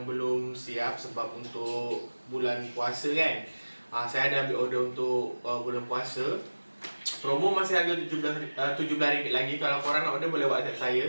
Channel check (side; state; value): both; inverted; correlation -1.00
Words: belum siap sebab untuk bulan puasa kan. Saya ada ambil order untuk bulan puasa. Promo masih harga RM17 lagi. Kalau korang nak order boleh WhatsApp saya.